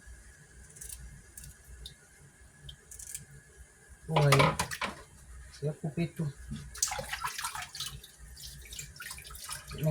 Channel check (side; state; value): both; identical; correlation 1.00